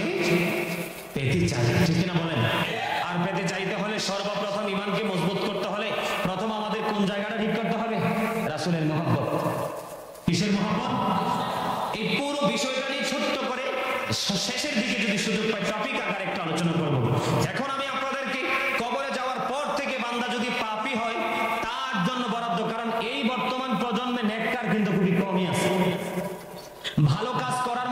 পেতে চাই। ঠিক কিনা বলেন? আর পেতে চাইতে হলে সর্বপ্রথম ইমানকে মজবুত করতে হলে প্রথম আমাদের কোন জায়গাটা ঠিক করতে হবে? রাসূলের মহব্বত। কিসের মহব্বত? এই পুরো বিষয়টা নিয়ে ছোট্ট করে শেষের দিকে যদি সুযোগ পাই টপিক আকারে একটা আলোচনা করব। এখন আমি আপনাদেরকে কবরে যাওয়ার পর থেকে বান্দা যদি পাপী হয় তার জন্য বরাদ্দ, কারণ এই বর্তমান প্রজন্মে নেককার কিন্তু খুবই কমই আছে। ভালো কাজ করার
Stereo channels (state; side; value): identical; both; correlation 1.00